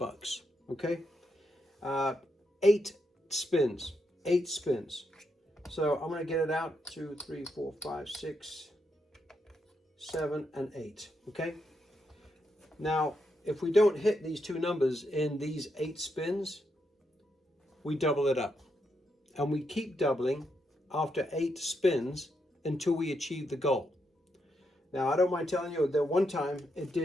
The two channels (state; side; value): normal; both; correlation 0.81